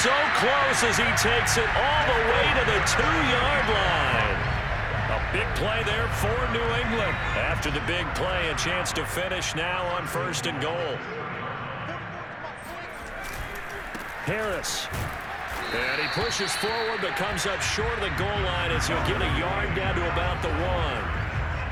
so close as he takes it all the way to the 2-yard line. A big play there for New England. After the big play, a chance to finish now on 1st and goal. Harris. And he pushes forward but comes up short of the goal line as he'll get a yard down to about the 1.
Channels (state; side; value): identical; both; correlation 1.00